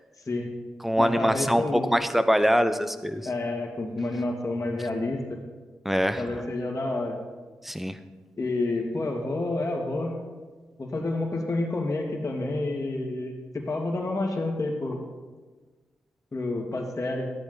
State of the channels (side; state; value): both; normal; correlation 0.92